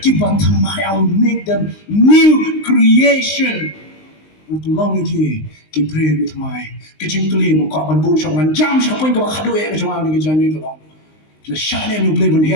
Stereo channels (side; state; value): right; late; 19 ms